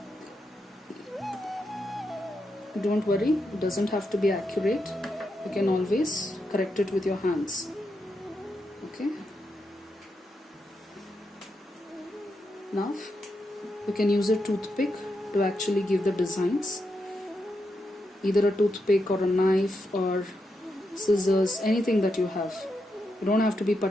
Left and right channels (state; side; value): normal; both; correlation 0.84